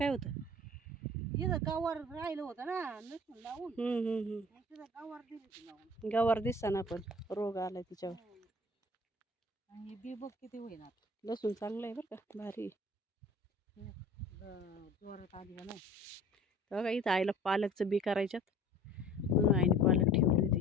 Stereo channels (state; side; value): normal; both; correlation 0.46